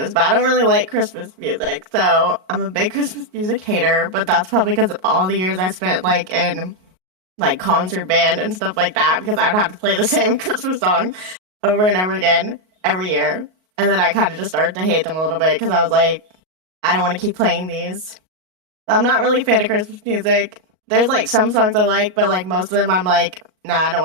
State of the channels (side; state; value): left; late; 38 ms